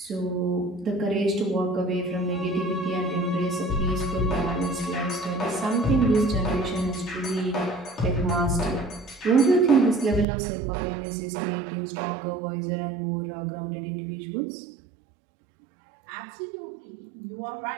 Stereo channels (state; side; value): drops out; left; at 10.2 s